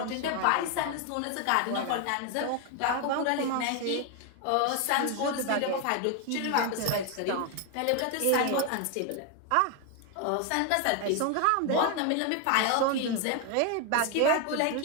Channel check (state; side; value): different; both; correlation 0.01